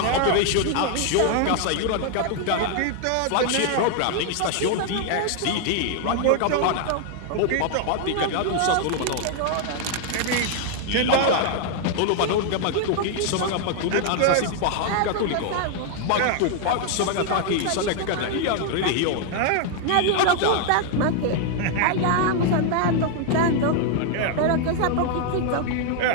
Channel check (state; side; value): different; both; correlation 0.00